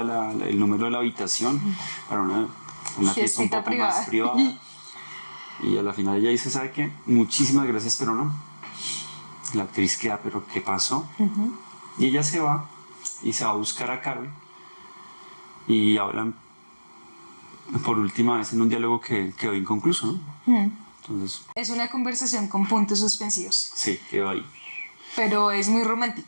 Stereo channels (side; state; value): both; inverted; correlation -1.00